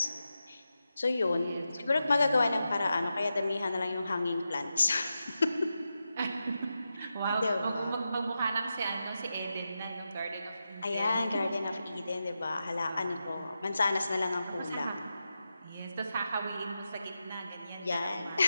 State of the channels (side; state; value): both; inverted; correlation -0.89